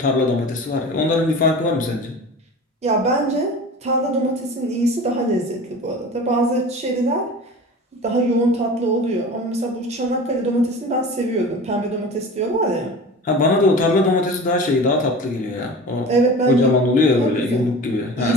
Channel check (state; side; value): normal; both; correlation 0.36